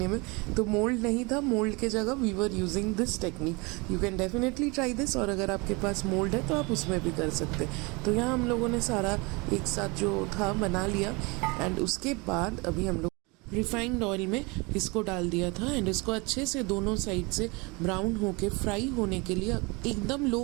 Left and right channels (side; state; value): left; quieter; 27.3 dB